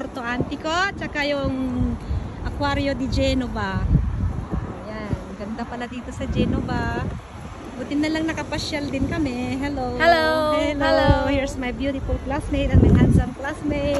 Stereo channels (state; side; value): identical; both; correlation 1.00